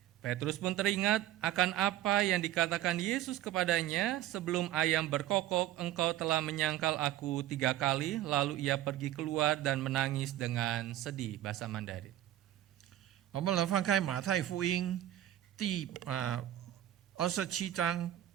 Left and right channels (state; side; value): quieter; left; 13.2 dB